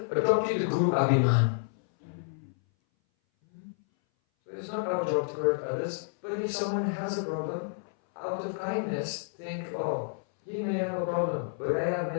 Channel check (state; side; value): silent; right; 58 dB below the other